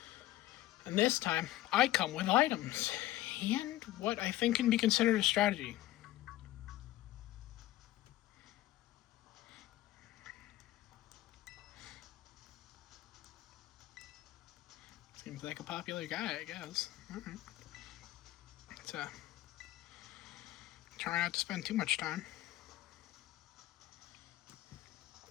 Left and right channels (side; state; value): right; quieter; 15.6 dB